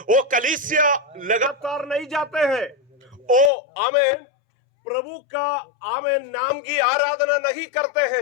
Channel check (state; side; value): drops out; right; at 3.5 s